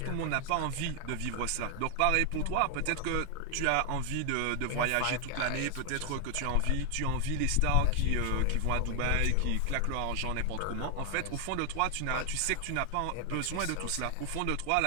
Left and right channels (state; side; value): different; both; correlation 0.00